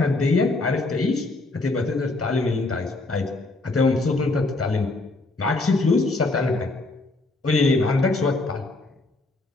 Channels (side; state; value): right; quieter; 3.1 dB